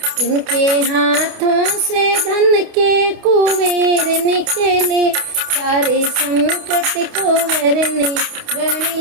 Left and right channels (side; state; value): left; late; 28 ms